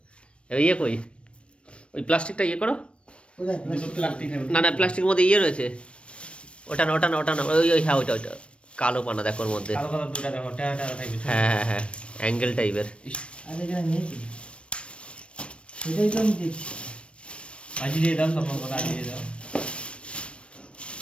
ইয়ে কই, ওই প্লাস্টিকটা ইয়ে করো। না না, প্লাস্টিকের মধ্যে ইয়ে রয়েছে, ওটা না ওটা না ওটা না, ওই ওই হ্যাঁ ওইটা ওইটা কালো পানা দেখো ওর মধ্যে। হ্যাঁ হ্যাঁ হ্যাঁ, অ্যাঙ্গেল টাইপের।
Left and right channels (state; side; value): late; right; 0.060 ms